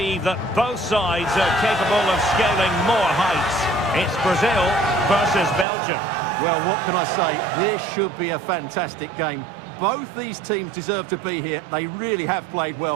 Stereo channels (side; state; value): left; drops out; at 5.7 s